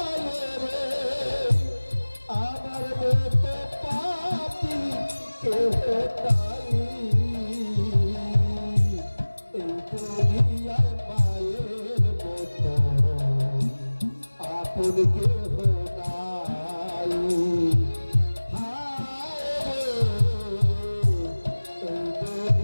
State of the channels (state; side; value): inverted; both; correlation -1.00